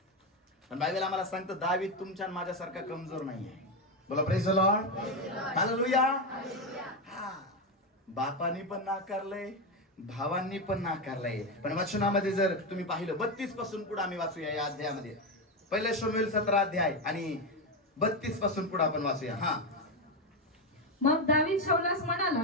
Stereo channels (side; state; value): both; normal; correlation 0.11